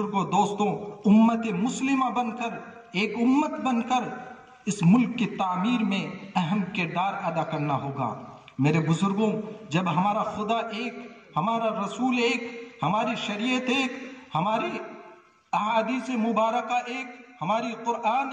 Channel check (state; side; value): identical; both; correlation 1.00